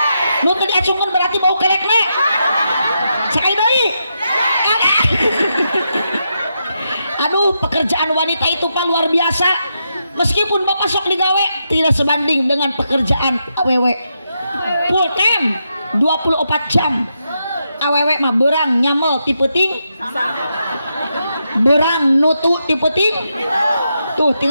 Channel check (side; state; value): both; inverted; correlation -0.83